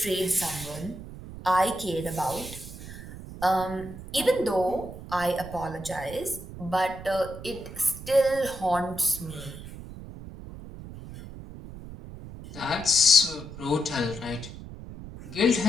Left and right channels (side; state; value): right; noise; rumble, 13 dB below the sound